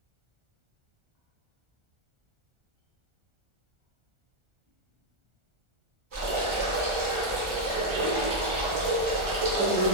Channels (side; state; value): left; late; 1.4 ms